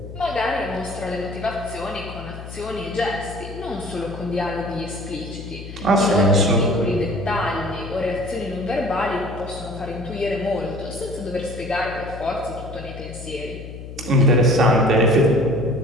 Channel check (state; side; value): noise; left; hum, 12 dB below the sound